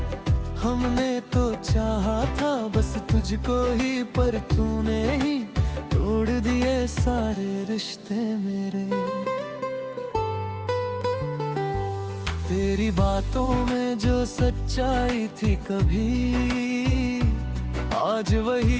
हमने तो चाहा था बस तुझको ही, पर तूने ही तोड़ दिए सारे रिश्ते मेरे। तेरी बातों में जो सच्चाई थी कभी, आज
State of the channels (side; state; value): both; identical; correlation 1.00